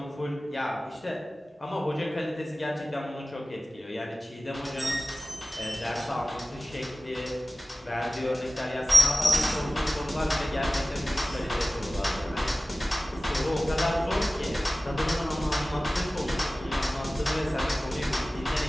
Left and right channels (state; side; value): normal; both; correlation 0.97